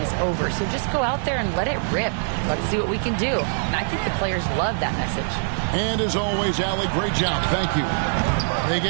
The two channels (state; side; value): silent; left; digital silence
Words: over, so just go out there and let it rip. Let's see what we can do. And I think the players love that message. And as always, Allie, great job. Thank you. They